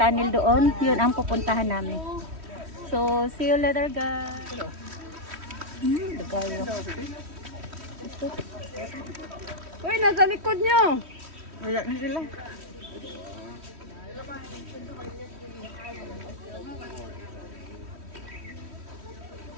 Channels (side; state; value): left; late; 3.1 ms